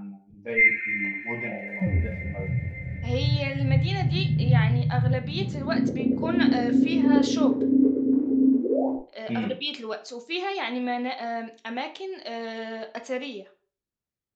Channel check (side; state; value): both; identical; correlation 1.00